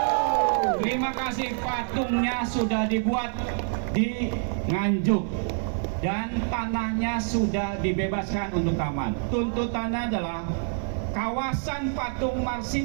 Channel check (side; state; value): left; silent; 60 dB below the other